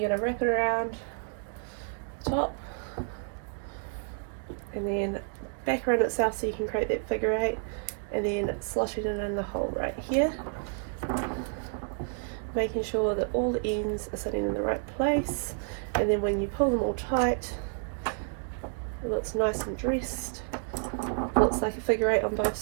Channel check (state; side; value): silent; left; 58 dB below the other